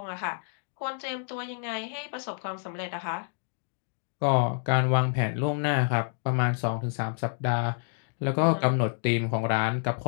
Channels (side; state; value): right; silent; digital silence